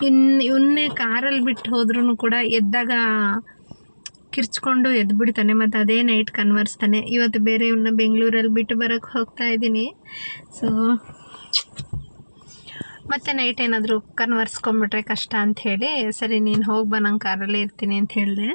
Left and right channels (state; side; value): inverted; both; correlation -1.00